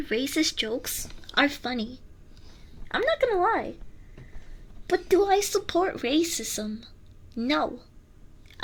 racist jokes are funny. I'm not gonna lie. But do I support racism? No,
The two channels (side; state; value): both; identical; correlation 1.00